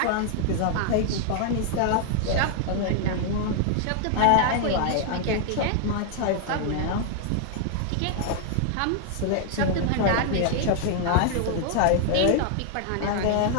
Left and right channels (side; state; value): both; different; correlation 0.00